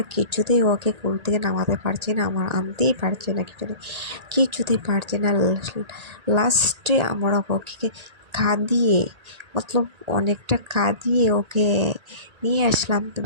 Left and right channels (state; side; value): late; left; 1.8 ms